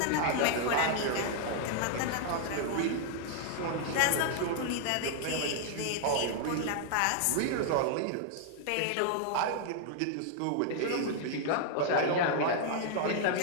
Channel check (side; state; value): both; different; correlation 0.00